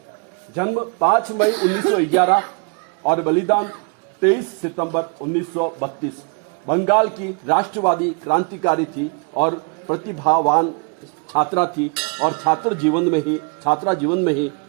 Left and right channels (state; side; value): quieter; left; 35.5 dB